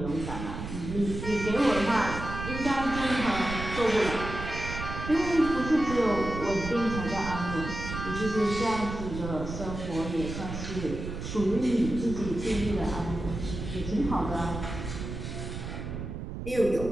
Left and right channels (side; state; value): right; noise; rumble, 7 dB below the sound